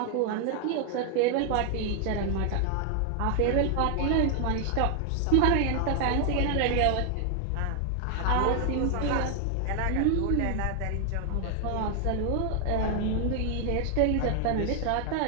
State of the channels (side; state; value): both; different; correlation 0.00